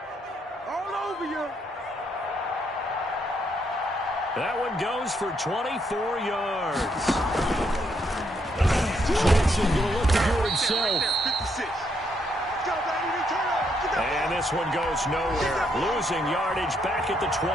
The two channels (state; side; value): normal; both; correlation 0.75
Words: All over you. That one goes for 24 yards. Jackson going to look to do it himself. 56. And this one goes nowhere. Losing yardage back at the